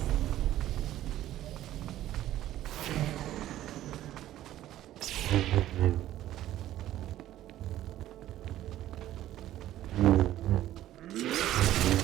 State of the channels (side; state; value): left; quieter; 13.4 dB